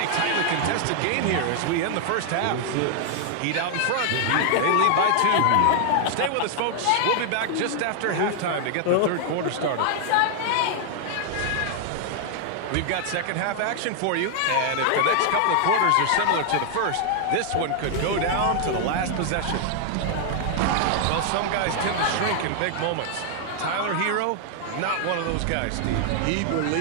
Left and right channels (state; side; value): different; both; correlation 0.00